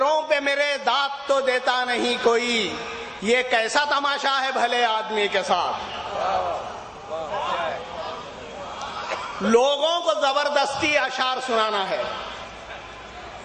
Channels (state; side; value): identical; both; correlation 1.00